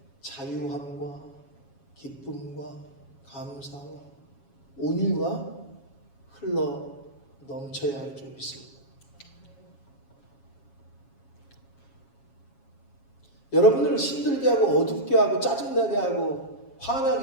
자유함과 기쁨과 감사와 온유가 흘러 넘쳐야 할 줄 믿습니다. 여러분들을 힘들게 하고 어둡게 하고 짜증나게 하고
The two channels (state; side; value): late; right; 7.3 ms